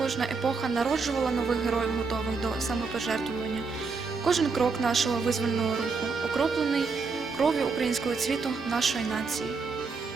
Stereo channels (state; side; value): quieter; left; 4.6 dB